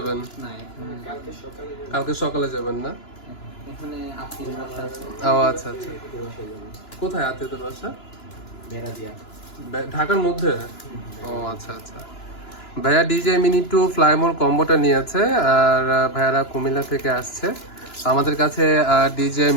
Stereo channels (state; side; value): late; right; 2.9 ms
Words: না, এখানে কালকে সকালে যাবেন না? এখানে আত্মীয় বাসা আছে। ও আচ্ছা আচ্ছা। কোথায় আত্মীয়দের বাসা? ঢাকার মধ্যে? ও আচ্ছা আচ্ছা। ভাইয়া ডিজে মিনি টু ফ্লাইমোর কম্বোটা নিয়েছে আর ভাইয়ারা কুমিল্লা থেকে আসছে। আমাদের কাছে ডিজে